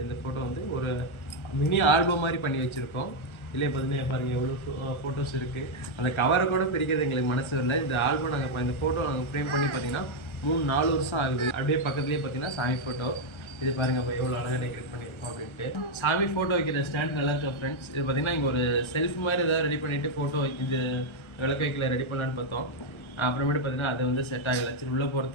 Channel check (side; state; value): right; late; 1.3 ms